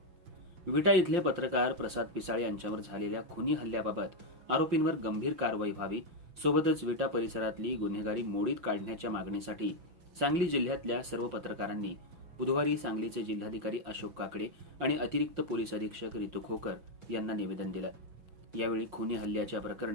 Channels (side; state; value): left; late; 5.6 ms